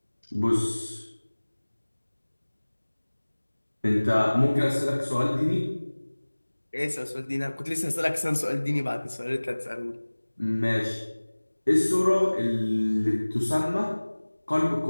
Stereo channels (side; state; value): both; inverted; correlation -1.00